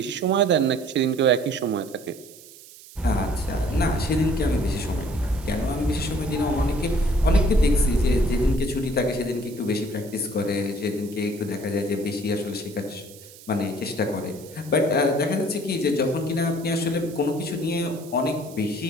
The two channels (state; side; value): noise; right; hiss, 20 dB below the sound